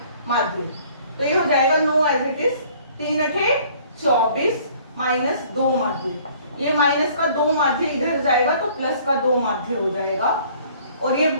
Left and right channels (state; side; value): inverted; both; correlation -0.56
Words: माध्य। तो ये हो जाएगा 9 एज इट इज, 3 8 24 माइनस 2 माध्य। ये माइनस का 2 माध्य इधर जाएगा तो प्लस का 2 माध्य हो जाएगा, और ये